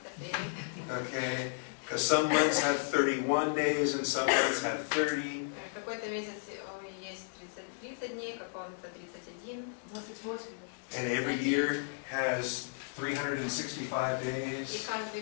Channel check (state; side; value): silent; right; digital silence